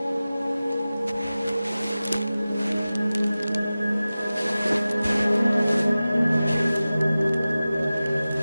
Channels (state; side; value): inverted; both; correlation -0.96